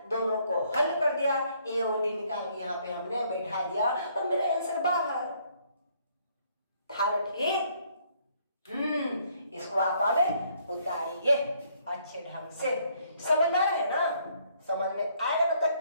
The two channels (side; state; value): both; inverted; correlation -0.66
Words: दोनों को हल कर दिया, ए और डी निकाल के यहाँ पे हमने बैठा दिया और मेरा आंसर बाहर था ना, ठीक। इसको आप आगे उतारिए अच्छे ढंग से, समझ में आ रहा है ना, समझ में आएगा मतलब